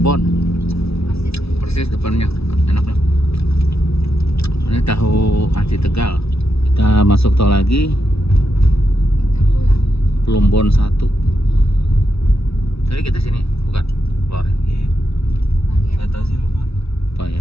Persis depannya, enak lah. Ini tahu aci Tegal. Kita masuk tol lagi. Kita pulang. Plumbon 1. Tadi kita sini, bukan? Keluar ya? Iya. Nggak tahu sih, lupa. Apa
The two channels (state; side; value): late; right; 0.78 ms